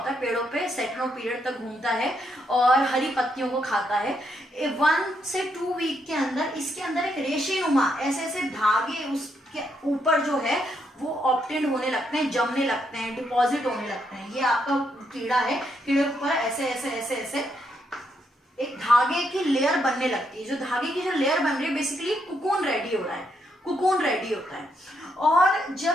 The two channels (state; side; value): normal; both; correlation 0.77